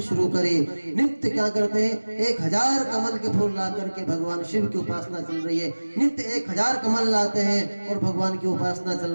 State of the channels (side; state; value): both; inverted; correlation -1.00